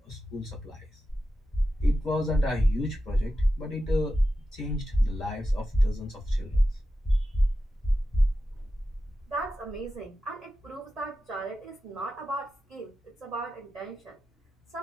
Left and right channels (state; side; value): normal; both; correlation 0.92